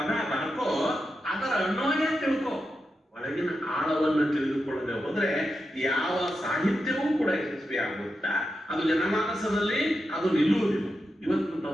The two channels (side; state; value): both; normal; correlation 0.88